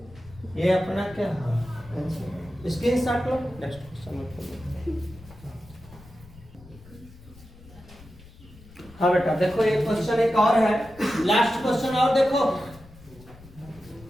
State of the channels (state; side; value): noise; left; rumble, 21 dB below the sound